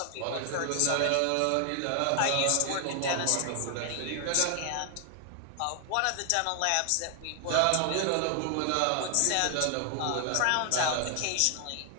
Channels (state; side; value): different; both; correlation 0.00